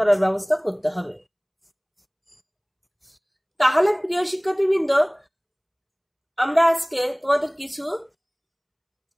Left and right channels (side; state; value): both; identical; correlation 1.00